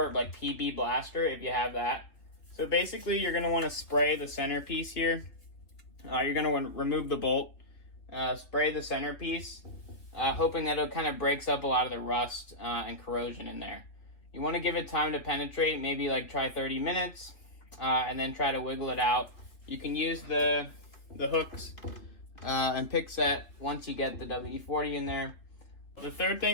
like PB Blaster if you have that. So basically you're going to want to spray the centerpiece here. You're going to want to remove the bolt, spray the centerpiece, hoping that it kind of breaks up a lot of the rust and corrosion in there. You want to give it time to penetrate, maybe like try 30 minutes, and then try to wiggle it out. You can use the hooks and pick set once you get the WD-40 in there. The third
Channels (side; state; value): right; late; 3.3 ms